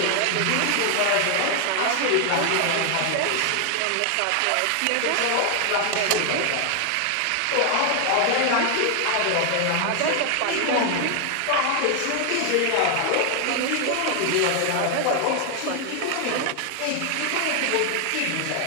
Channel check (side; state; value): both; different; correlation 0.00